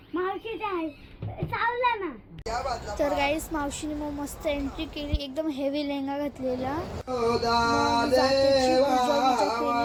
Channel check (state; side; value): identical; both; correlation 1.00